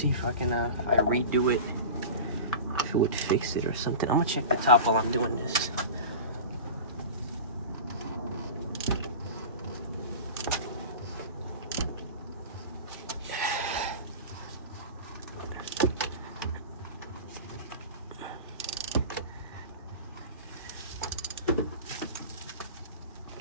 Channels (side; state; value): both; inverted; correlation -0.32